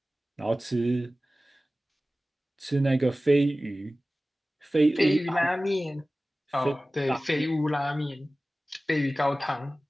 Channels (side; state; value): both; normal; correlation 0.97